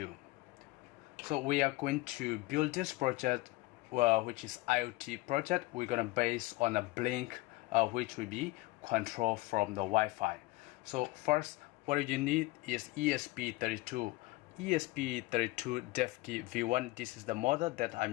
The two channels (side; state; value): right; quieter; 20.6 dB